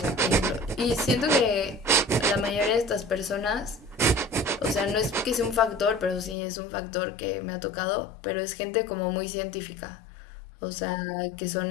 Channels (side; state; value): right; drops out; at 6.4 s